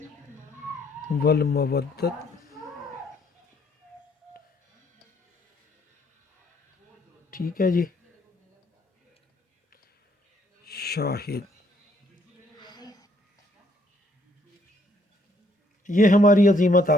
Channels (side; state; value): both; normal; correlation 0.68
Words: والمودت. ٹھیک ہے جی. شاہد. یہ ہماری عظیمت